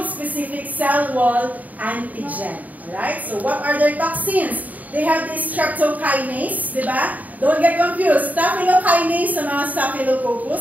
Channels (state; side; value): late; left; 0.076 ms